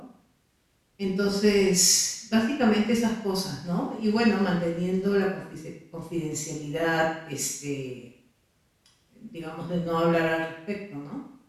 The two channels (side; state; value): both; identical; correlation 1.00